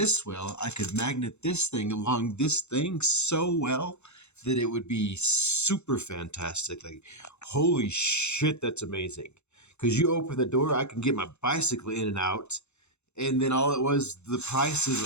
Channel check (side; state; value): right; late; 0.82 ms